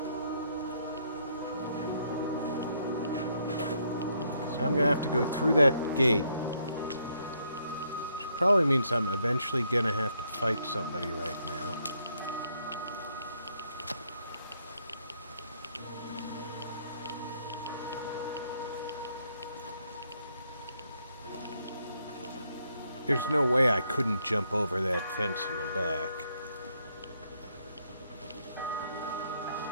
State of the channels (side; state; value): both; inverted; correlation -0.72